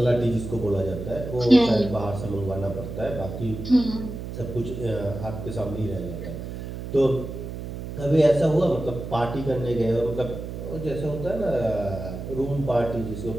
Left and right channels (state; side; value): noise; right; hum, 8 dB below the sound